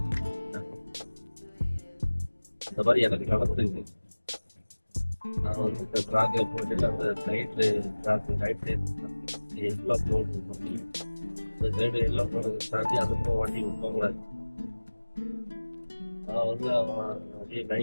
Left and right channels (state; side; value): inverted; both; correlation -1.00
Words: இந்த மாதிரி எனக்கு நடந்துருக்கு. நான் வந்து இந்த ட்ராக்ல போட்டு அந்த சைட்ல ரைட் சைடு எல்லாம் போடணும். இந்த சைடு எல்லாம் போடுறது தாண்டி அதுக்கும் வண்டி விட்டோங்களாது. நான் வந்து அவன் அப்படியே